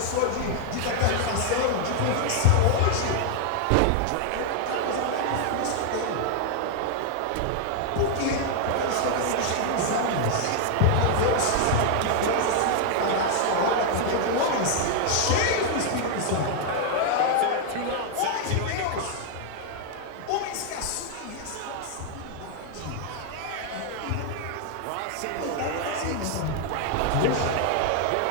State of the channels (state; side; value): different; both; correlation 0.00